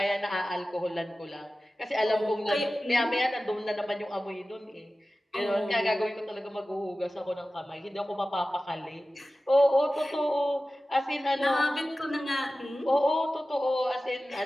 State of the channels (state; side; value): normal; both; correlation 0.96